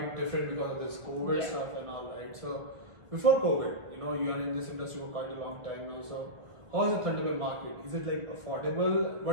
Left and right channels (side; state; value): left; late; 1.3 ms